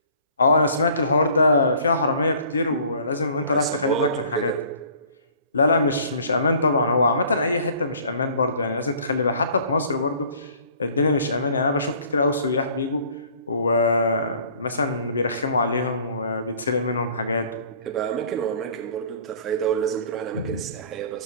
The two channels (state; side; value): inverted; both; correlation -0.53